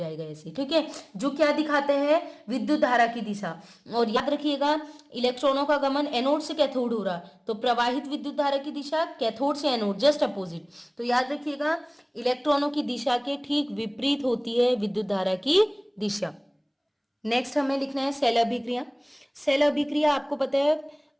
ऐसे, ठीक है, जो क्या दिखाते हैं, विद्युत धारा की दिशा। और याद रखिएगा, इलेक्ट्रॉनों का गमन एनोड से कैथोड हो रहा, तो प्रवाहित विद्युत धारा की दिशा कैथोड से एनोड जस्ट अपोजिट। तो याद रखिएगा, इलेक्ट्रॉनों की दिशा के ठीक विपरीत होती है विद्युत धारा की दिशा। नेक्स्ट हमें लिखना है सेल अभिक्रिया। सेल अभिक्रिया आपको पता है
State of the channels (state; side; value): identical; both; correlation 1.00